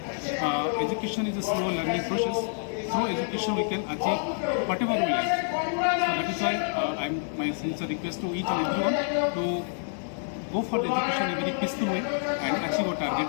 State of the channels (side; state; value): right; silent; digital silence